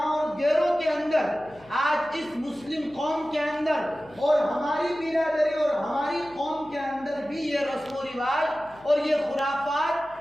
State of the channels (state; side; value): noise; left; hum, 26 dB below the sound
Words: اور دیروں کے اندر، آج اس مسلم قوم کے اندر اور ہماری برادری اور ہماری قوم کے اندر بھی یہ رسم و رواج اور یہ